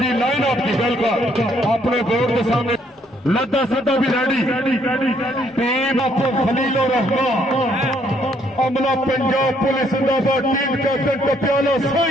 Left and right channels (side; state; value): both; normal; correlation 0.68